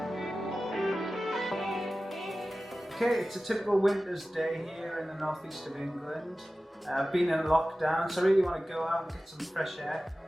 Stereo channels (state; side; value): normal; both; correlation 0.96